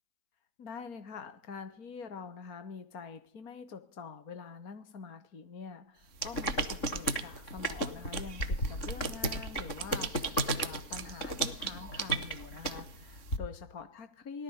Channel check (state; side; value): late; right; 3.7 ms